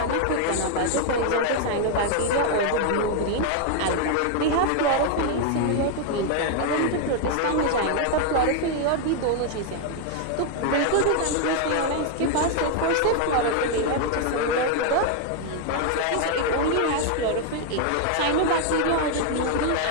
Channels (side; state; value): both; different; correlation 0.00